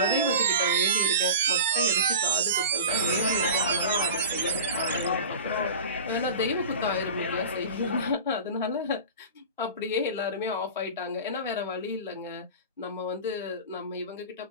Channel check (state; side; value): inverted; both; correlation -0.34